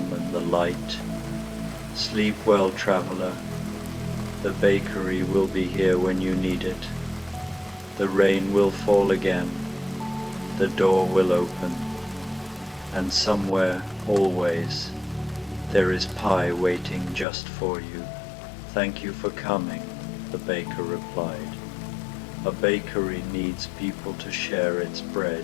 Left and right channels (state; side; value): drops out; right; at 17.2 s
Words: and the light. Sleep well, traveler. The bakery will be here when you need it. The rain will fall again. The door will open. And somewhere, always, there is pie waiting just for you. Thank you for coming, the baker replied. A bakery needs people to share its